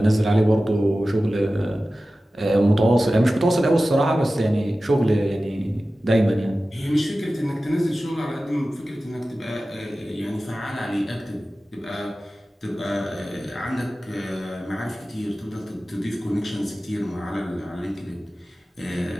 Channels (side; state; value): both; normal; correlation 0.95